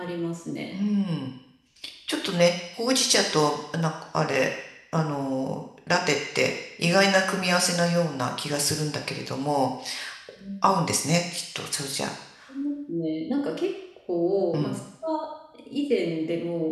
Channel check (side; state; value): both; identical; correlation 1.00